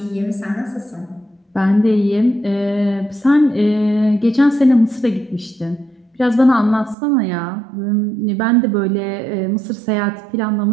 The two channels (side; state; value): left; drops out; at 7.0 s